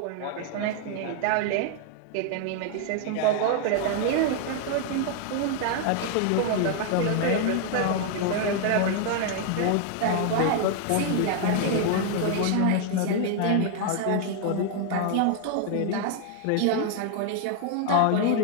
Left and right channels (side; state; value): both; different; correlation 0.00